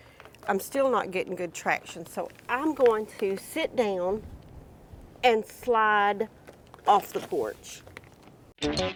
I'm still not getting good traction. So I'm going to sit down and slide off the porch. Smell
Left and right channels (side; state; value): both; identical; correlation 1.00